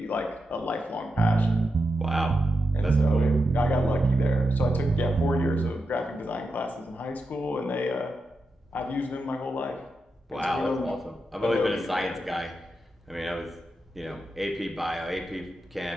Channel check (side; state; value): both; normal; correlation 0.87